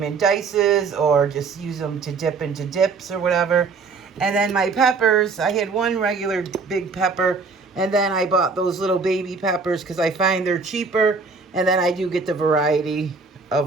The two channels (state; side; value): quieter; left; 4.5 dB